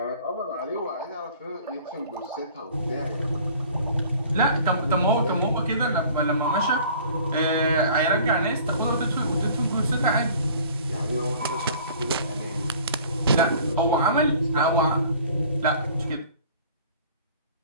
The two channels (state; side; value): inverted; both; correlation -0.49